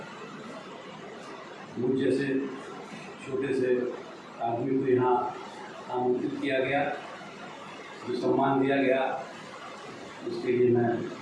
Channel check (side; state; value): both; identical; correlation 1.00